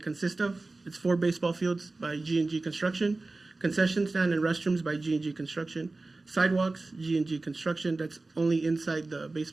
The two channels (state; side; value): quieter; left; 3.3 dB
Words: consists of. It's 4 baseball fields by G&G Construction, concession stand and restrooms by G&G Construction, sidewalks, G&G Construction, that's only inside the